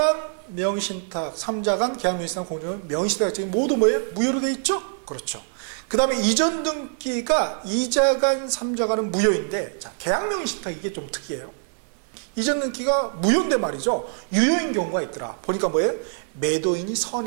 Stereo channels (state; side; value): silent; left; digital silence